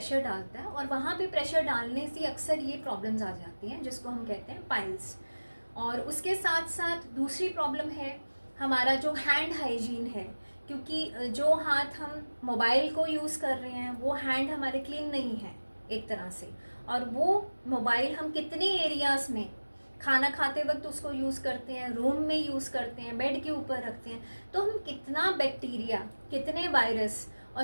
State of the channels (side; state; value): both; inverted; correlation -1.00